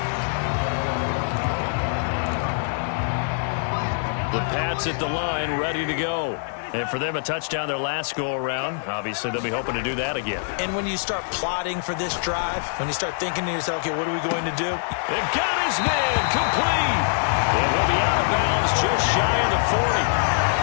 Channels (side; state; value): right; silent; 63 dB below the other